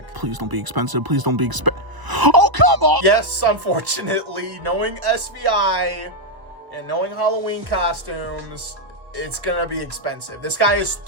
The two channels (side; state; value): left; late; 1.0 ms